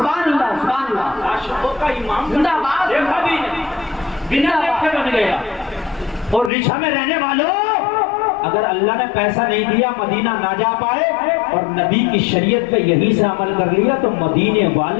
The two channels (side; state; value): right; drops out; at 6.5 s